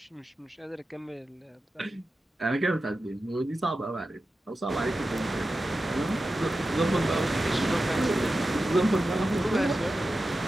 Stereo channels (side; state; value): both; normal; correlation 0.92